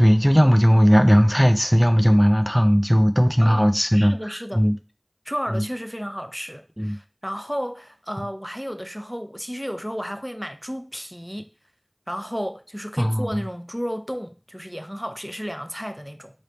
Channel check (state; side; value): identical; both; correlation 1.00